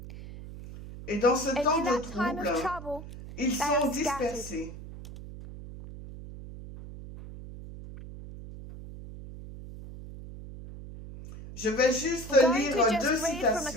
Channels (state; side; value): noise; right; hum, 13 dB below the sound